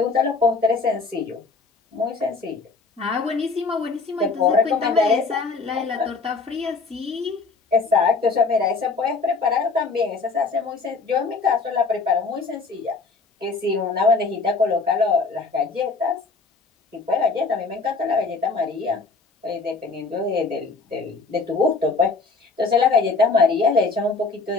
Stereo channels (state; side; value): quieter; right; 4.2 dB